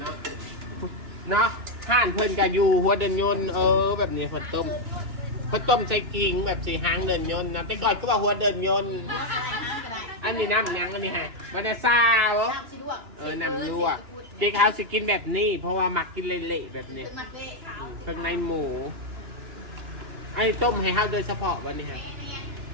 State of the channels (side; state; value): left; late; 2.9 ms